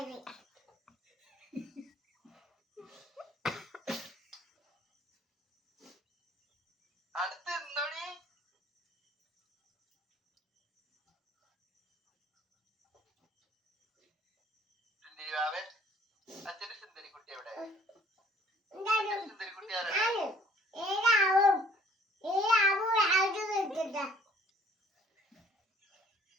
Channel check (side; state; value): both; normal; correlation 0.57